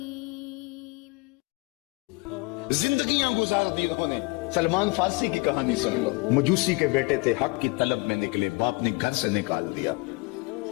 زندگیاں گزار دی انہوں نے۔ سلمان فارسی کی کہانی سن لو۔ مجوسی کے بیٹے تھے، حق کی طلب میں نکلے، باپ نے گھر سے نکال دیا،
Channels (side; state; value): right; quieter; 27.1 dB